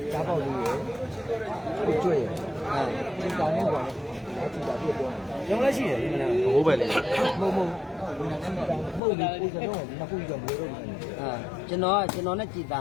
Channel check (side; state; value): right; drops out; at 9.0 s